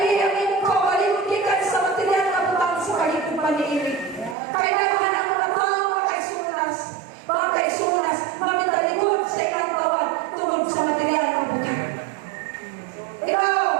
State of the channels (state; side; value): drops out; left; at 4.4 s